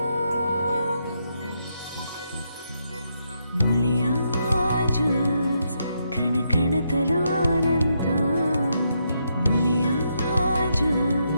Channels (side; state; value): both; inverted; correlation -0.79